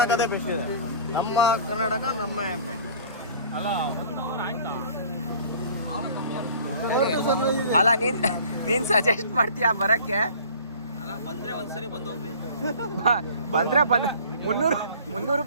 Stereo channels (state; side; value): inverted; both; correlation -0.47